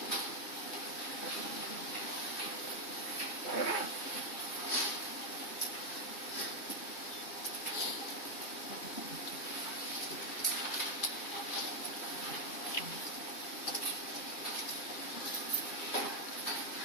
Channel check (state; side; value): late; right; 3.2 ms